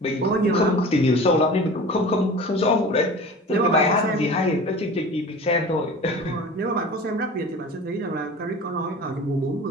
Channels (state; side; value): normal; both; correlation 0.38